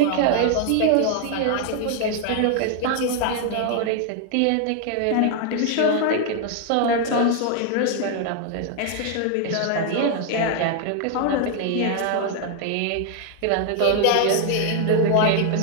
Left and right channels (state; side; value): different; both; correlation 0.00